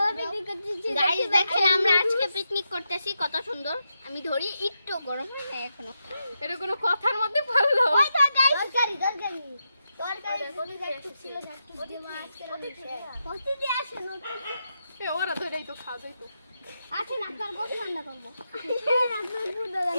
পিকনিক করতেছি গাইস দেখেন আমরা আজকে পিকনিক করতেছি কত সুন্দর আমি ধরি একটু গরম হয় না এখনো এটা কোনো কথার মধ্যে পড়লো ওই তো গাইস দরকারি বলি যাচ্ছে ছিল যাচ্ছে দেওয়া আজকে কষ্ট দিয়ে আসে নতুন এ ওরা ধরেই তো খাবেই তো আচ্ছা না আপনার গোশ রান্না করব আপনার ফুড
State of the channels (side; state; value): both; inverted; correlation -0.86